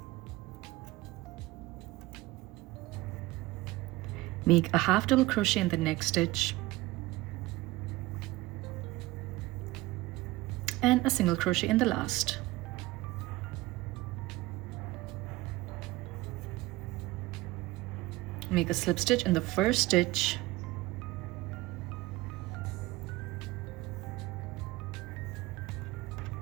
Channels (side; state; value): left; quieter; 19.4 dB